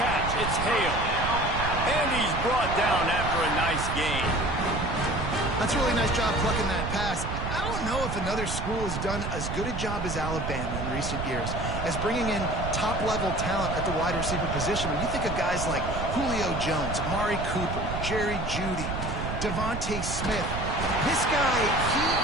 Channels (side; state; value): right; noise; rumble, 4 dB below the sound